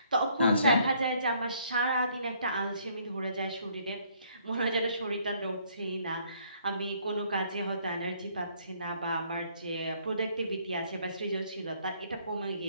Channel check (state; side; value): inverted; both; correlation -0.65